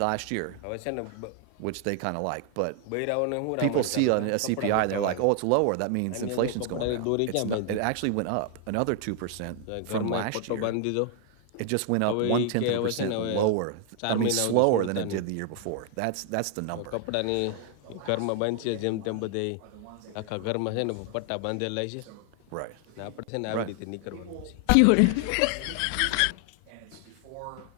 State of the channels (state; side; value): different; both; correlation 0.00